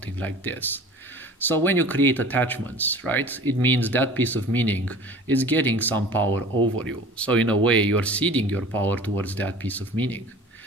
like this. So when you create attachments, right, it means that piece of meaning is getting some power over you. So in a way, you're ceding your power towards that piece of meaning.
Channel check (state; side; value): normal; both; correlation 0.43